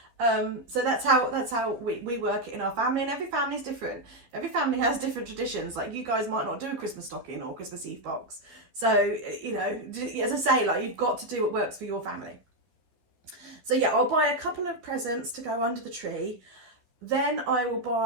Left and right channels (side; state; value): left; late; 13 ms